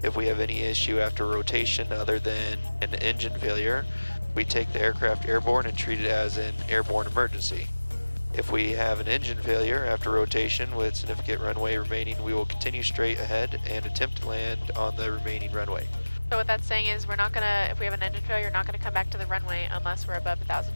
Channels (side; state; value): both; inverted; correlation -1.00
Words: If we have any issue after rotation other than an engine failure, we take the aircraft airborne and treat it as an airborne emergency. If we have an engine failure after rotation with significant runway remaining, we will continue straight ahead and attempt to land on the remaining runway. So what that's saying is we're not gonna, if we have an engine failure, we're not gonna come back to the runway unless we're above 1,000